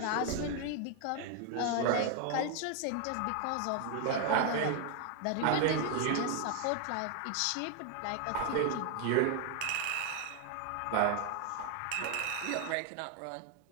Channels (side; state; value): both; different; correlation 0.00